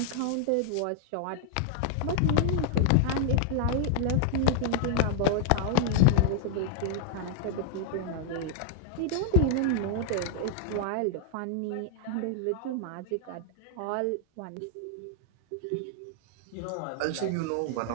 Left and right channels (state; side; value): different; both; correlation 0.00